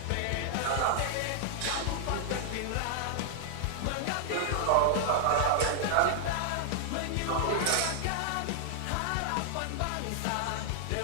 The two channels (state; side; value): different; both; correlation 0.00